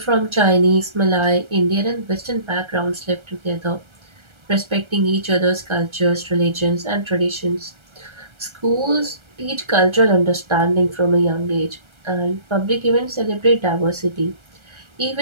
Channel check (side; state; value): left; late; 1.3 ms